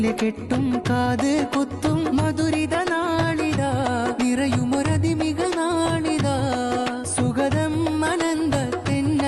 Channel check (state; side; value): identical; both; correlation 1.00